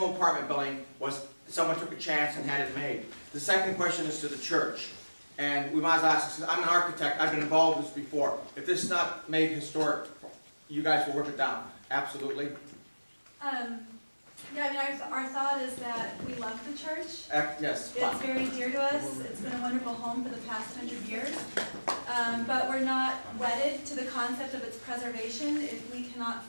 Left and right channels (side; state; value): both; inverted; correlation -1.00